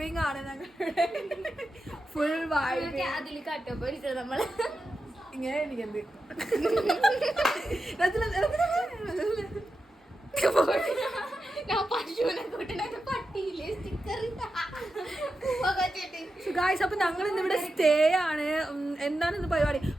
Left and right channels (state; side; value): normal; both; correlation 0.90